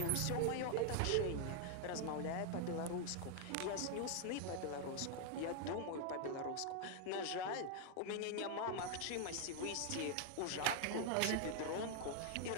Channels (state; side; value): different; both; correlation 0.00